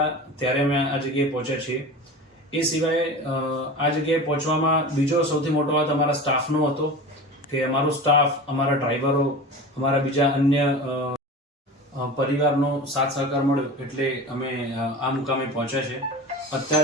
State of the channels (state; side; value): normal; both; correlation 0.32